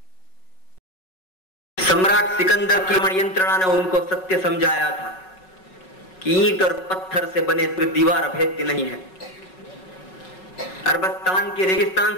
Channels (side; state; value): right; late; 5.4 ms